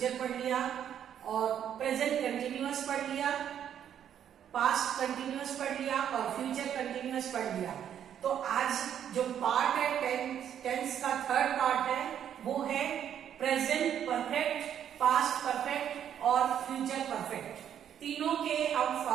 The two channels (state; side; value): quieter; left; 9.5 dB